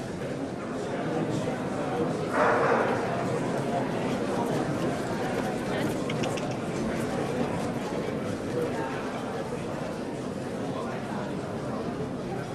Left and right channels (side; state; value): both; identical; correlation 1.00